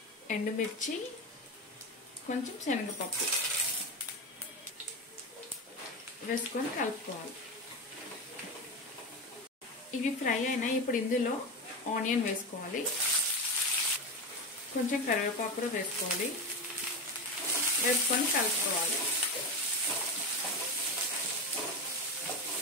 ఎండుమిర్చి, కొంచెం శనగపప్పు వేసుకొని కలుపుకోవాలి. ఇవి ఫ్రై అయినాయి. ఇప్పుడు ఇందులో ఆనియన్ వేసుకోవాలి. కొంచెం కరివేపాకు కూడా వేసుకోవాలి. వేసుకొని కలుపుకోవాలి.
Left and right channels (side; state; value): both; normal; correlation 0.19